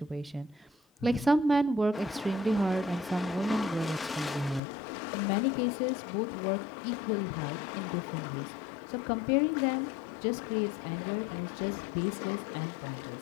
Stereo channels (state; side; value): drops out; right; at 4.6 s